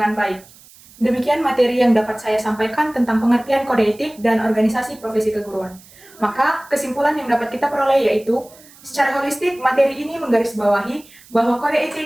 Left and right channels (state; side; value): noise; right; hiss, 24 dB below the sound